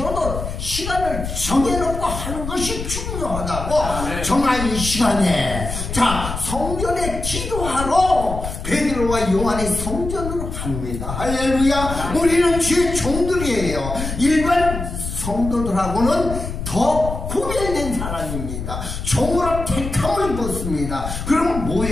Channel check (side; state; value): left; noise; rumble, 6 dB below the sound